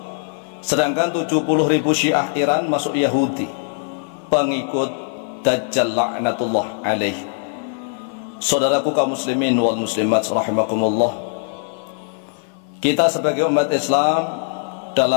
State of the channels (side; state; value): right; silent; 58 dB below the other